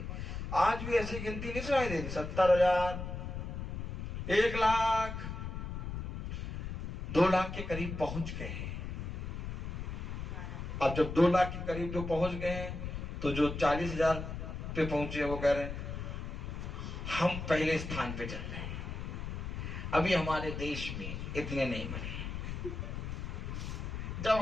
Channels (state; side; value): noise; left; rumble, 5 dB below the sound